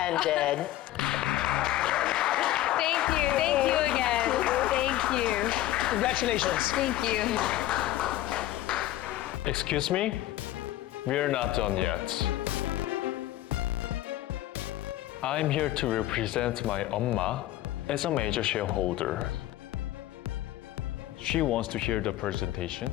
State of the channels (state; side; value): quieter; right; 14.7 dB